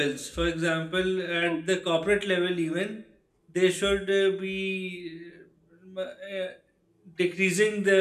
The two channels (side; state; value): both; identical; correlation 1.00